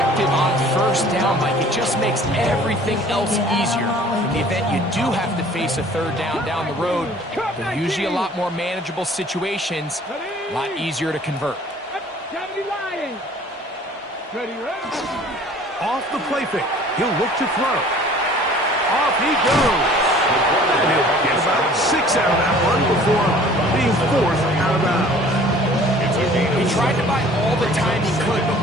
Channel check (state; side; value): normal; both; correlation 0.51